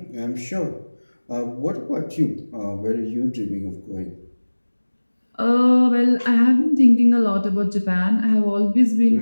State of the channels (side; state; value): both; inverted; correlation -1.00